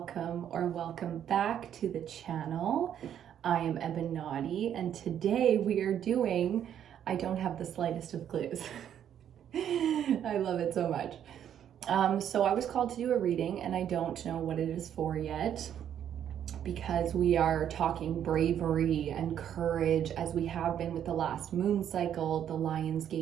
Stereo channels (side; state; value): left; quieter; 9.7 dB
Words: back to the channel. I am EBINOTTI, and today we are doing, I don't have the slightest of clues. I love it so much. So I was called to do a reading, and I don't know what it is for yet, because we are talking bravery and courage, as we have been with the last moon cycle, the